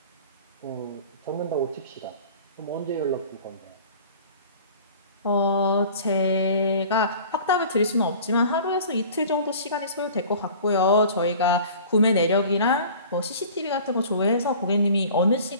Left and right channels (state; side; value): inverted; both; correlation -0.44